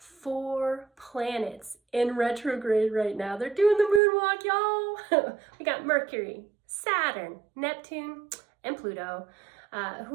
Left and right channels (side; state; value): left; drops out; at 4.0 s